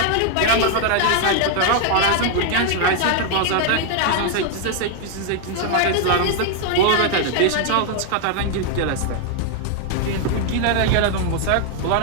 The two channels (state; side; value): different; both; correlation 0.00